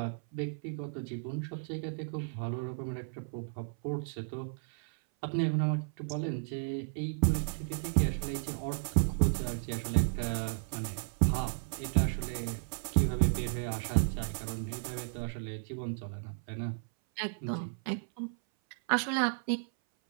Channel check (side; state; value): left; silent; 55 dB below the other